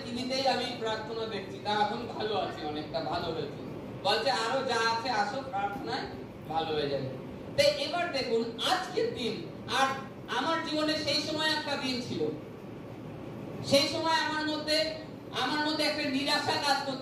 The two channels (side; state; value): both; identical; correlation 1.00